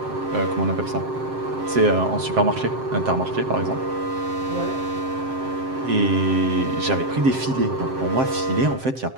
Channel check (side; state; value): left; late; 7.6 ms